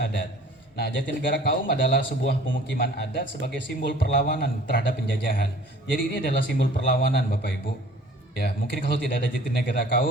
Nah, Jatinegara Kaum adalah sebuah pemukiman adat sebagai simbol perlawanan terhadap penjajahan. Jadi ini adalah simbol perlawanan Bapak Ibu. Ya, mungkin kalau tidak ada Jatinegara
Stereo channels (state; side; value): normal; both; correlation 0.50